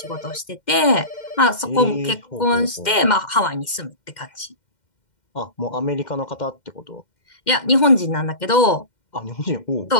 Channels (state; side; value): late; right; 2.1 ms